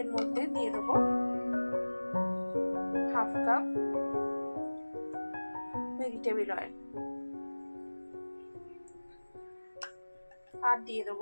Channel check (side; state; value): both; inverted; correlation -1.00